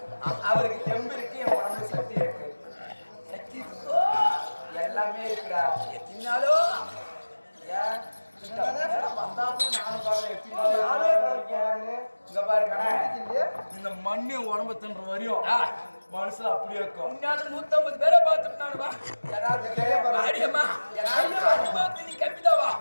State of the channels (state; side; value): inverted; both; correlation -1.00